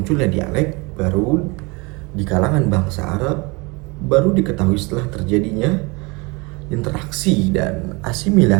dialek baru di kalangan bangsa Arab baru diketahui setelah terjadinya interaksi dan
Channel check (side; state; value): left; quieter; 27.2 dB